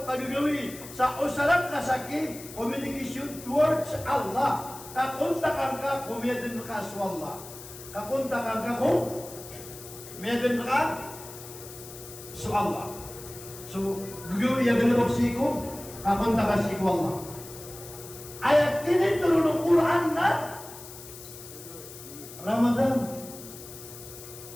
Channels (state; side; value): noise; left; hiss, 15 dB below the sound